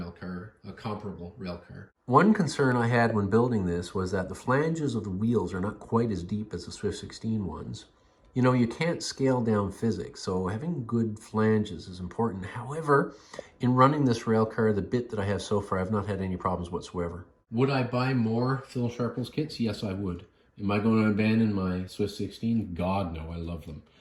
car, a comparable rail car. One concern I had when building this was that the flanges of the wheels are not quite as deep as the Swift 16 ones. You know, you can't scale down physics, so having good flanges is important. However, in running this rail car, the bit that I have so far, I've not had any problems whatsoever. Would I buy more Phil Sharples kits? Yes, I would. Am I going to abandon my Swift 16? God, no, I love them.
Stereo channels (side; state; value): both; identical; correlation 1.00